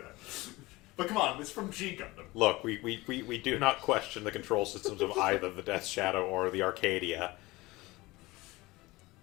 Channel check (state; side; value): quieter; right; 21.0 dB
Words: But come on, it's from G Gundam. Look, we do not question the control systems of either the Death Shadow or the Arcadia.